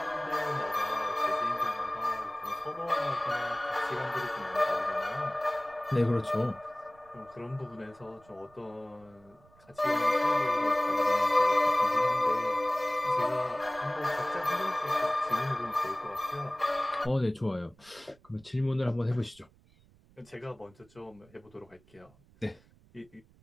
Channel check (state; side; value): noise; right; rumble, 29 dB below the sound